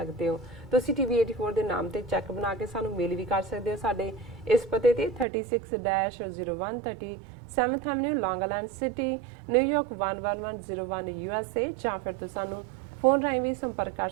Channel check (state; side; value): drops out; left; at 5.2 s